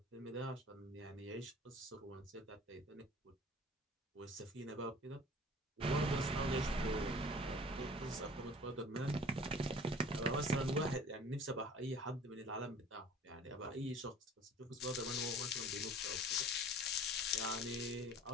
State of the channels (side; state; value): both; normal; correlation 0.46